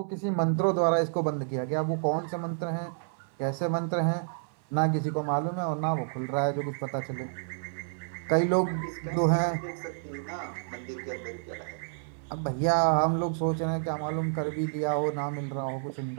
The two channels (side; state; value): left; silent; 55 dB below the other